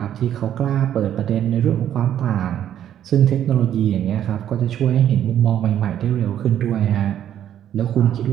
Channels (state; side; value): quieter; left; 10.6 dB